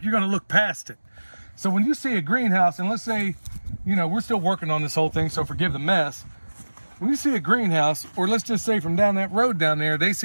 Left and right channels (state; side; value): inverted; both; correlation -1.00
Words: you're going to look past it. So when you see a greenhouse, and let's say, you know, we're still working on this whole thing, so forgive the mess. When you see a greenhouse, or let's just say from down that road down there, they